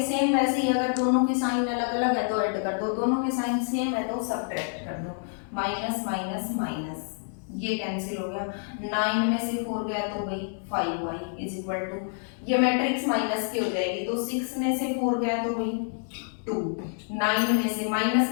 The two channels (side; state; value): right; silent; 60 dB below the other